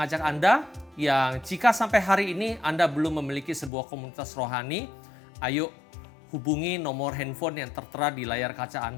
Anda yang jika sampai hari ini Anda belum memiliki sebuah komunitas rohani, ayo hubungi nomor handphone yang tertera di layar kaca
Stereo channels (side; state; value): right; drops out; at 3.7 s